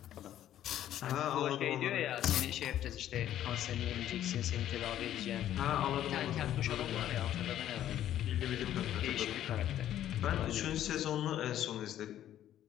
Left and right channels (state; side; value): quieter; right; 11.8 dB